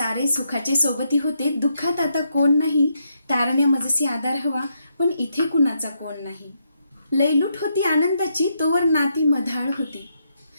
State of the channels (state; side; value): inverted; both; correlation -0.79